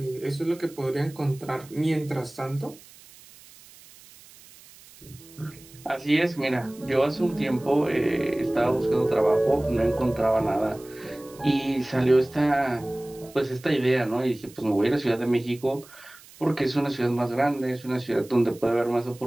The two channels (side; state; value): right; noise; hiss, 22 dB below the sound